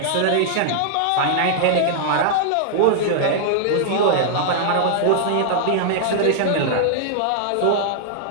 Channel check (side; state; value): both; different; correlation -0.01